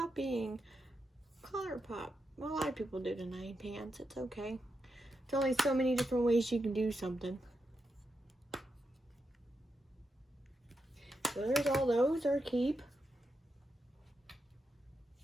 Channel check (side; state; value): both; normal; correlation 0.85